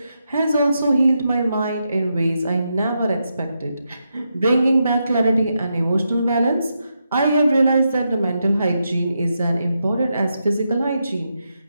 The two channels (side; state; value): both; inverted; correlation -0.85